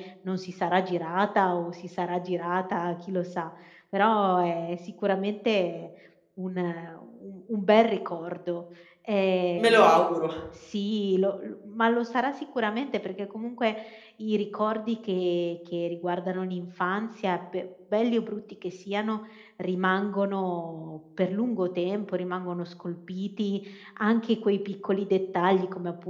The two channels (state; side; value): identical; both; correlation 1.00